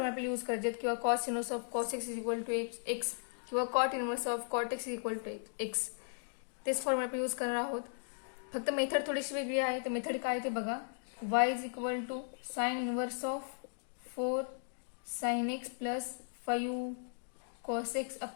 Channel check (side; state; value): right; silent; digital silence